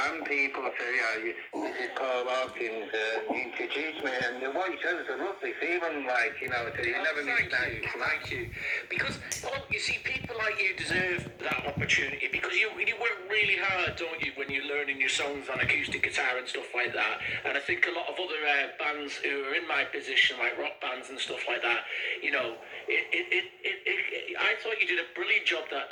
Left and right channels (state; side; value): identical; both; correlation 1.00